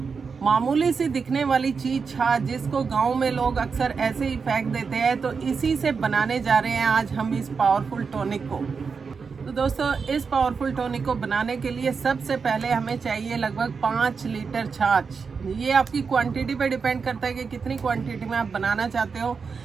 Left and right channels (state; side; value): quieter; left; 5.4 dB